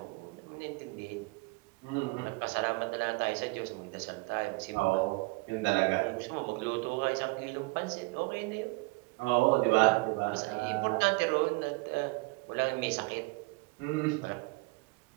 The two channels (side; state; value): left; quieter; 26.4 dB